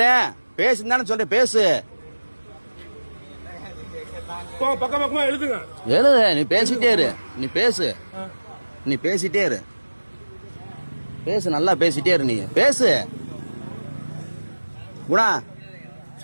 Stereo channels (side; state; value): both; inverted; correlation -1.00